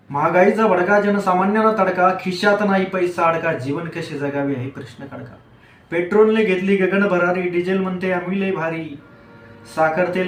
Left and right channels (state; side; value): identical; both; correlation 1.00